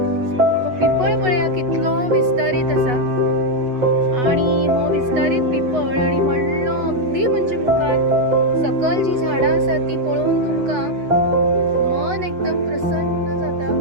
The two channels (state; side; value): late; left; 8.1 ms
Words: तो पिपळ पळया कितलो विस्तारीत आसा आनी हो विस्तारीत पिपळ आनी व्हडलो अगदी म्हणजे मुखार सकल जी झाडां आसात ती पळोवन तुमकां मन एकदम प्रसन्न जाता।